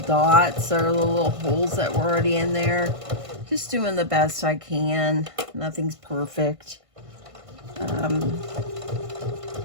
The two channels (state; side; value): late; left; 1.5 ms